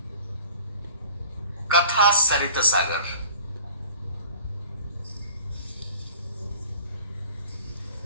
Katha Sarita Sagar,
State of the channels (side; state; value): both; inverted; correlation -0.45